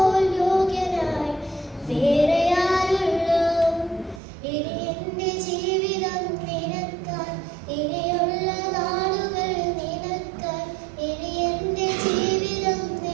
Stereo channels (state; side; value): drops out; left; at 4.2 s